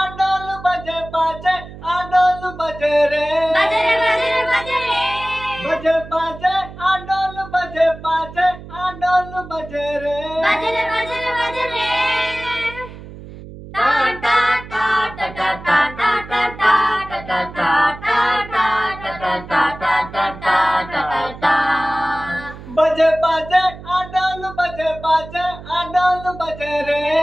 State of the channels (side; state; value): right; noise; hum, 15 dB below the sound